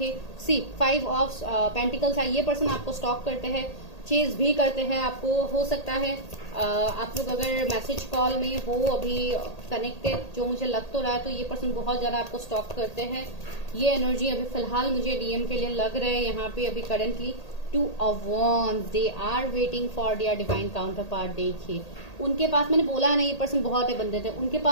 सी 5 ऑफ पेंटिकल्स है। ये पर्सन आपको स्टॉक करते हैं, चेज भी करते हैं आपको। हो सकता है आप लोग अगर मैसेज कॉल में हो अभी कनेक्टेड, जो मुझे लग तो रहा है, तो ये पर्सन बहुत ज्यादा आपको स्टॉक करते हैं। ये एनर्जी अभी फिलहाल मुझे डीएम के लिए लग रहा है यहाँ पे अभी currently. 2 of wands, they are waiting for their divine counterpart. देखिए उनके पास, मैंने बोला नहीं ये पर्सन बहुत है बंदे थे, उनके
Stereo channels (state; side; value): late; right; 1.8 ms